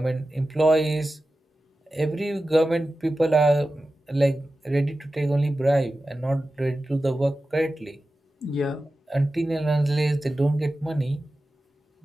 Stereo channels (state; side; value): normal; both; correlation 0.94